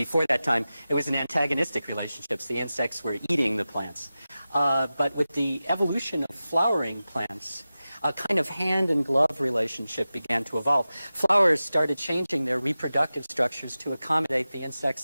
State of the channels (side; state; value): both; inverted; correlation -0.95